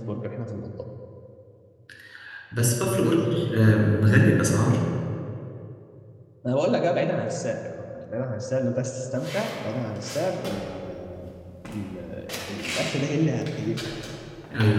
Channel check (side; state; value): both; identical; correlation 1.00